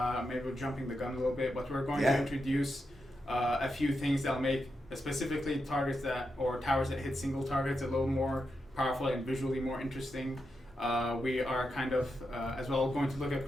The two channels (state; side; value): normal; both; correlation 0.86